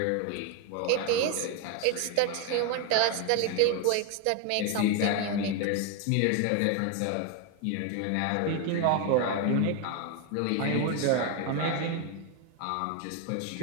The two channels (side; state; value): both; different; correlation 0.01